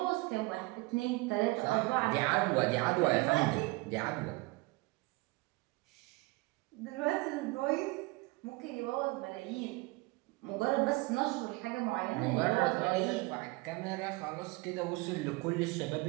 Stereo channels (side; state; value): left; quieter; 24.0 dB